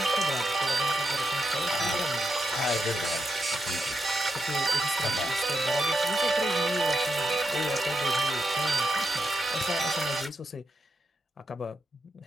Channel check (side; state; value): both; normal; correlation 0.83